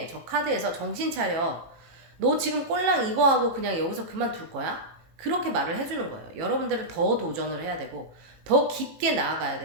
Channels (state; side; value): late; left; 18 ms